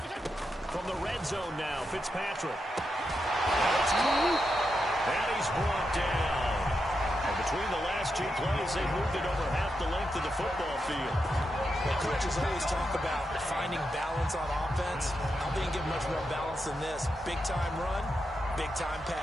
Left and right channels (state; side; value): normal; both; correlation 0.86